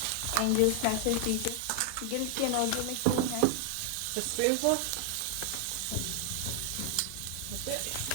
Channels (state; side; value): different; both; correlation 0.00